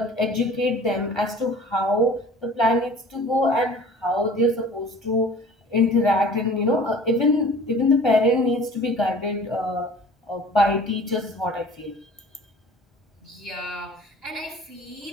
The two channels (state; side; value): normal; both; correlation 0.46